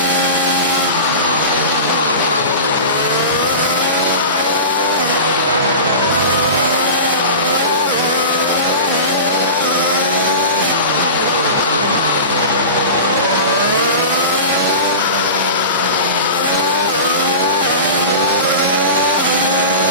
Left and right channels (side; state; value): both; inverted; correlation -0.31